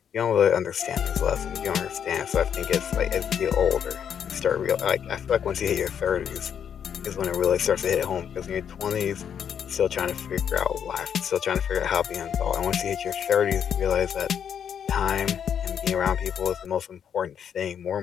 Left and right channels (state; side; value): quieter; right; 8.3 dB